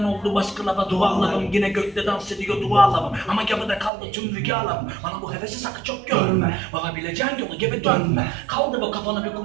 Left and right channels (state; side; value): drops out; left; at 3.9 s